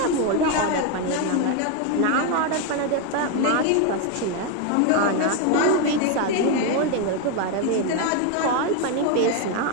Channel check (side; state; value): both; different; correlation 0.01